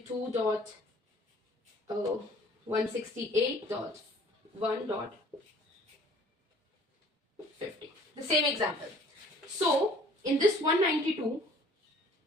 The same example. So, in this 192,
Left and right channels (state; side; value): normal; both; correlation 0.53